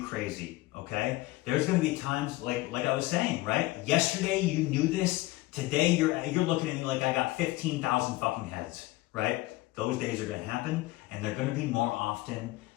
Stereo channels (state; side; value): quieter; right; 19.4 dB